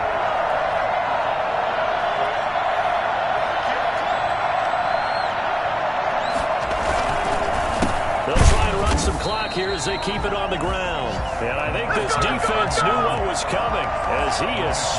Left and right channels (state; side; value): identical; both; correlation 1.00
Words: They'll try and run some clock here as they keep it on the ground. And I think this defense knew what was coming as he is